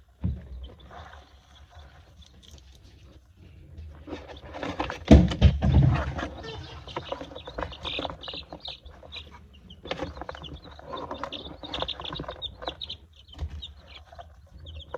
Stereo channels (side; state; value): both; identical; correlation 1.00